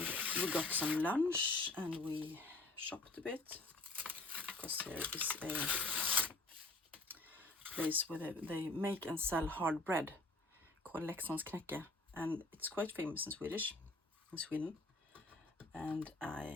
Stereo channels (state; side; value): quieter; right; 3.0 dB